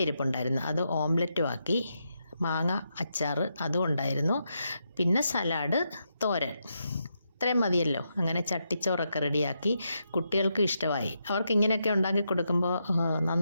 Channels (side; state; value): both; inverted; correlation -0.83